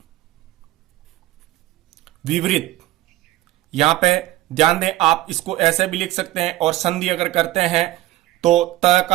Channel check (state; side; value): quieter; left; 16.7 dB